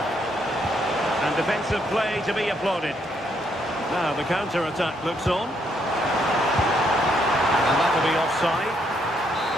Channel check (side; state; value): both; normal; correlation 0.73